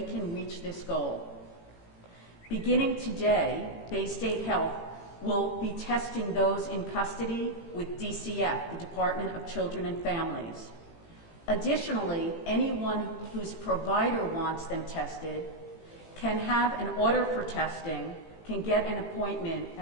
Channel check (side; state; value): right; late; 18 ms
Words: reach this goal. Beginning today, Bay State Health will be testing those in custody with DCF, the Department of Children and Families. Additionally, anyone whose provider wants them tested can have an order for testing, can get an appointment